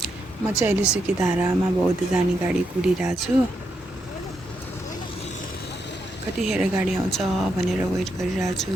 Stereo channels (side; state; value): both; normal; correlation 0.81